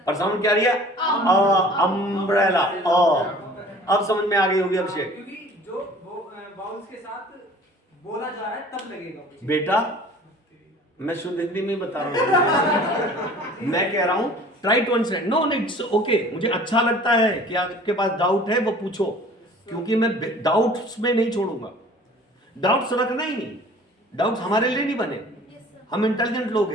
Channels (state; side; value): normal; both; correlation 0.48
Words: पर साउंड क्या रिया? अम्ब्रेला। अब समझ में आ गई होगी अभिषेक। क्योंकि जो वाउल्स के साथ बोला जा रहा है तब लगेगा वो। बेटा मैं शुद्ध हिंदी में बता रहा हूं, मैं कह रहा हूं try to understand. No it's okay, मुझे अच्छा लगता है कि आपके पास डाउट है वो पूछो, क्योंकि मैं डाउट्स में नहीं छोड़ूंगा। डाउट्स रखना ही नहीं, डाउट्स हमारे लिए नहीं बने, हम इंटेलिजेंट लोग